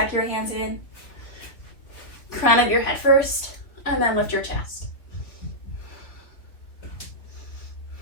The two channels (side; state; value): right; late; 3.6 ms